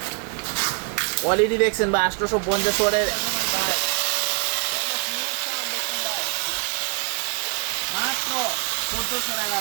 কোয়ালিটি দেখছেন ভাই, 850 ওয়াটের মাত্র 1400 টাকা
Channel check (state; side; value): quieter; left; 35.1 dB